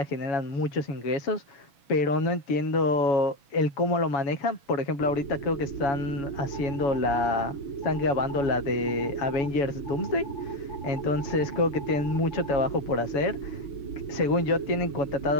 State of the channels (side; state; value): right; late; 7.1 ms